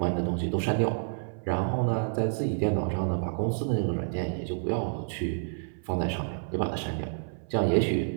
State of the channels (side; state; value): left; silent; 59 dB below the other